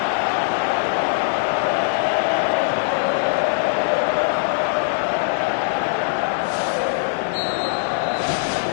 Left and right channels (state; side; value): silent; right; digital silence